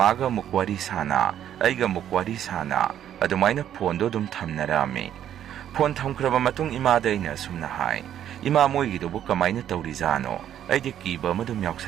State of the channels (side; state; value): left; quieter; 10.5 dB